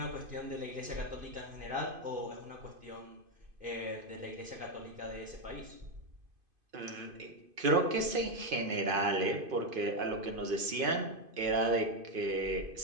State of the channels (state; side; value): late; left; 2.5 ms